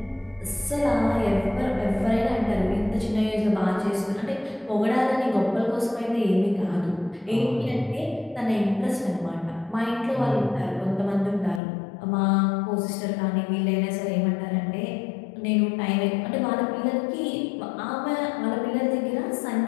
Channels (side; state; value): right; drops out; at 11.6 s